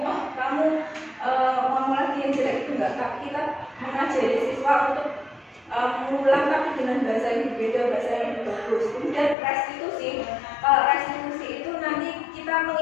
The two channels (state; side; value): drops out; right; at 9.3 s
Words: kamu ngomong lagi yang jelek, itu enggak. Tapi kita mengajari siswa untuk mengulang tapi dengan bahasa yang berbeda, bahasa yang bagus. Kemudian restitusi. Kalau restitusi itu nanti kita